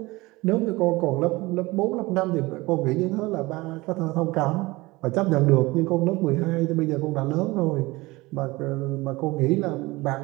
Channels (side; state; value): left; quieter; 21.6 dB